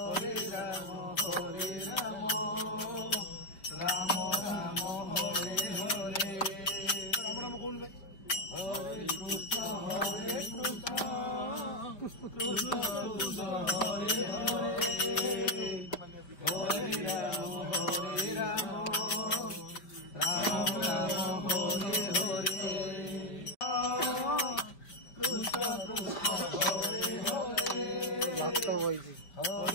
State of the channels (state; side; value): late; right; 5.2 ms